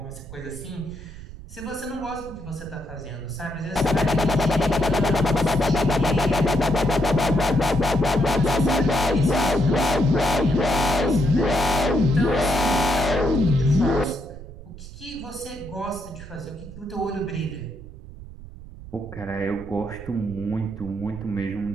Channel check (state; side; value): noise; right; rumble, 15 dB below the sound